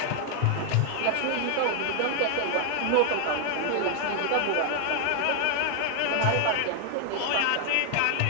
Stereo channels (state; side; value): different; both; correlation 0.00